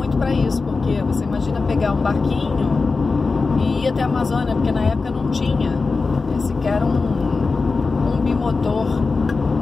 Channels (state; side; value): quieter; right; 4.2 dB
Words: para isso, porque você imagina pegar um barquinho e ir até a Amazônia, porque na época não tinha sequer um bimotor.